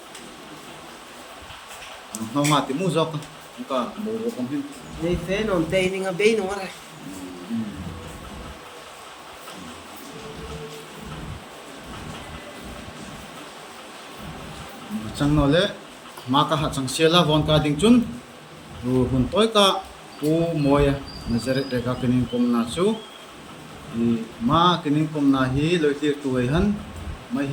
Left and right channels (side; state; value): both; identical; correlation 1.00